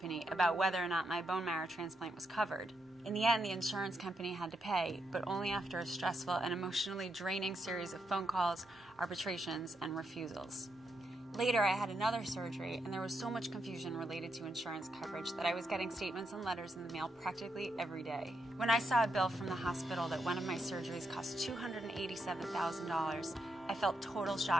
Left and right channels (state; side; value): normal; both; correlation 0.81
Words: about whether or not my bone marrow transplant was covered. In the end, the insurance company had to pay, but only after a stressful and emotionally draining series of phone calls, arbitrations, and refusals. Later, I had another surgery, and there was so much confusion related to insurance coverage that I was getting statements and letters in the mail practically every day. When I saw a bill from the hospital that one of my surgeries cost $287,000, I felt total